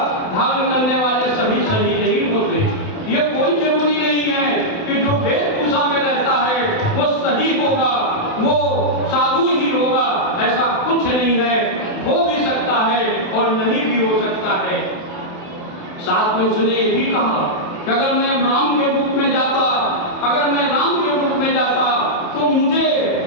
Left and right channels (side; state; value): right; late; 28 ms